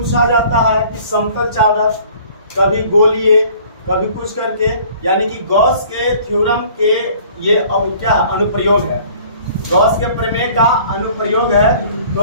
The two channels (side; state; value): both; inverted; correlation -0.52